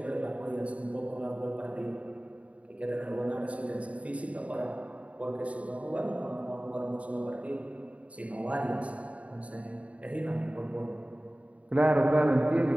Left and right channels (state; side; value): late; left; 0.066 ms